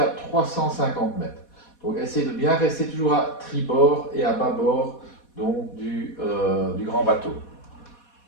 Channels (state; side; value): late; right; 4.2 ms